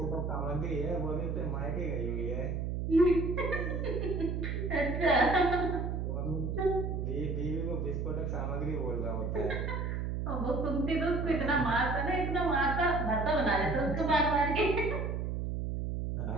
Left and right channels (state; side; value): noise; right; hum, 2 dB below the sound